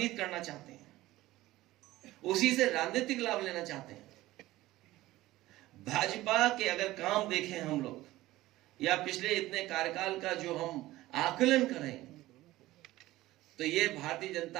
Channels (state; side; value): quieter; left; 16.9 dB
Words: करना चाहते हैं, उसी से राजनीतिक लाभ लेना चाहते हैं। भाजपा के अगर काम देखें हम लोग, या पिछले इतने कार्यकाल का जो हम आकलन करें, तो ये भारतीय